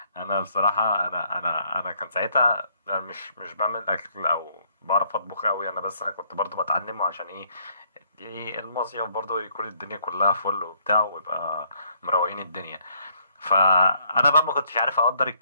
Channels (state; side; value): inverted; both; correlation -0.66